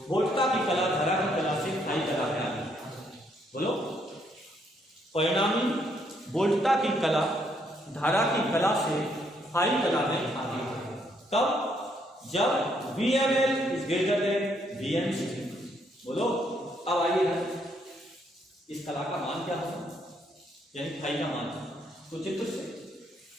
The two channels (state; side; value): normal; both; correlation 0.72